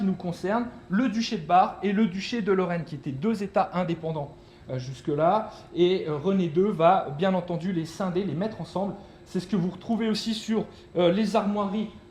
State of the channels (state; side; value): identical; both; correlation 1.00